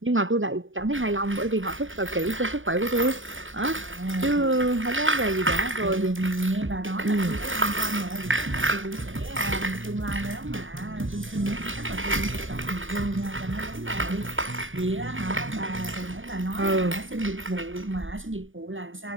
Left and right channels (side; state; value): left; late; 0.57 ms